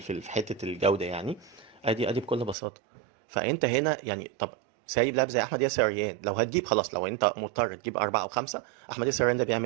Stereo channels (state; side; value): drops out; left; at 2.6 s